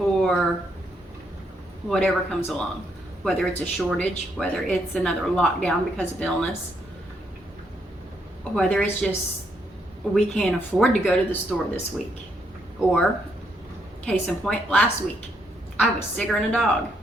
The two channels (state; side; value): normal; both; correlation 0.76